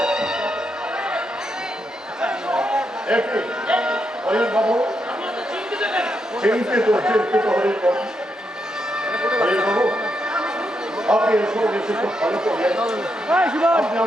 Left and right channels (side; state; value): both; normal; correlation 0.81